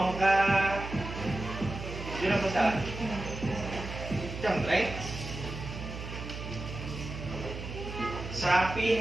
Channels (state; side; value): noise; right; hum, 8 dB below the sound